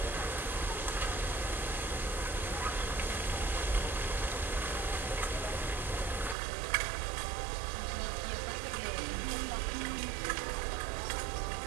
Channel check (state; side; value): drops out; left; at 6.4 s